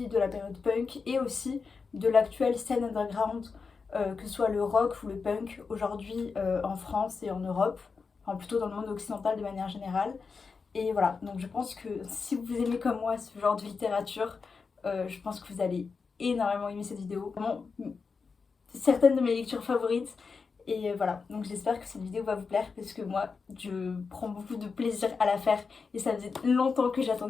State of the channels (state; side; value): quieter; right; 5.0 dB